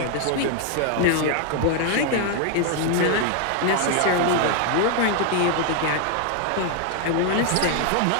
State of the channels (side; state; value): both; different; correlation 0.00